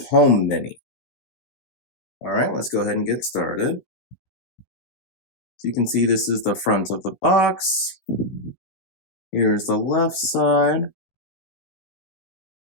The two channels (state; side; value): late; right; 16 ms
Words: Home Mini. All right, let's go ahead and get started. So you can see this is the front of the box. Here's the left side.